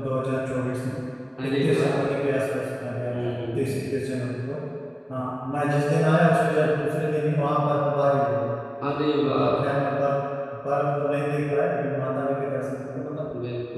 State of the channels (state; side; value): identical; both; correlation 1.00